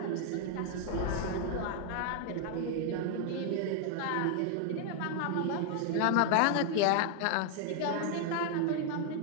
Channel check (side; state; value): both; different; correlation 0.00